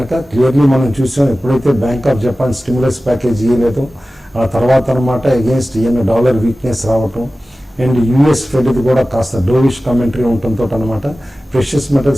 క్లియర్లీ మనం చూసాం ఎప్పుడైతే Bank of Japan stimulus package ఇవ్వలేదో ఆ తర్వాత అనమాట అగేన్స్ట్ డాలర్ వీక్నెస్ రావటం అండ్ యూఎస్ ఫెడ్ది కూడా కాస్త డోవిష్ కామెంటరీ ఉండటంతో అనమాట ప్రెషియస్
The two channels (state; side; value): normal; both; correlation 0.96